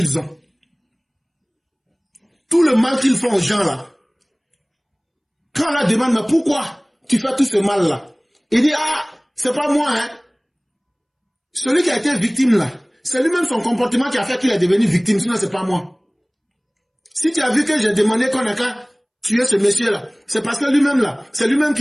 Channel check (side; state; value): both; identical; correlation 1.00